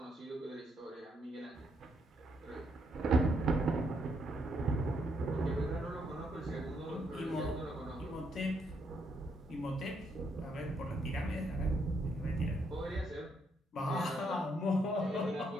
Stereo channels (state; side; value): normal; both; correlation 0.75